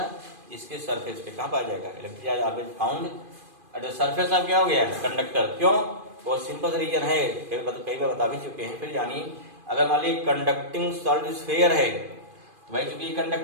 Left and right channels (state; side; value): late; left; 2.5 ms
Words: इसके सरफेस पे। कहाँ पाया जाएगा electric charge, always found at the surface of क्या हो गया कंडक्टर। क्यों, बहुत सिंपल रीजन है, कई बार बता भी चुके हैं, फिर जानिए। अगर मान लीजिए कंडक्टिंग सॉलिड स्फीयर है तो भाई चूंकि